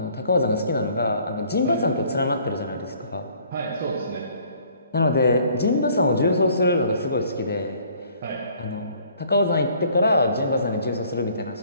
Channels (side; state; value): both; inverted; correlation -0.58